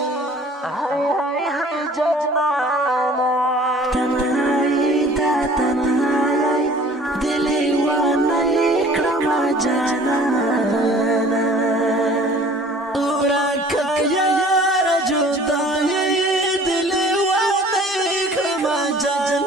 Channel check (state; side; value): normal; both; correlation 0.50